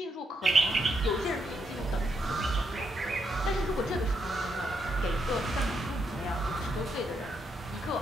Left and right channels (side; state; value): both; normal; correlation 0.79